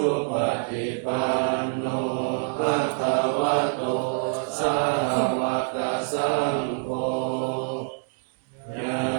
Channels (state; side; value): silent; left; digital silence